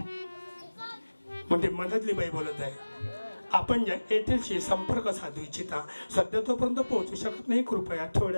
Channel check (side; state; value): both; inverted; correlation -1.00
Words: म्हणजे मधातली बाई बोलत आहे, आपण ज्या एअरटेलशी संपर्क साधू इच्छिता सध्या तोपर्यंत पोहोचू शकत नाही, कृपया